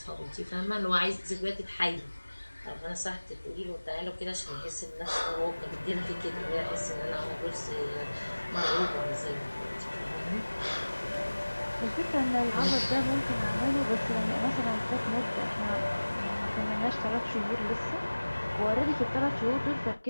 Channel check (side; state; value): both; inverted; correlation -1.00